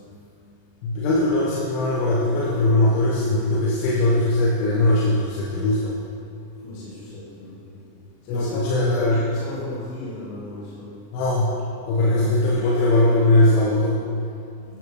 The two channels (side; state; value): right; late; 39 ms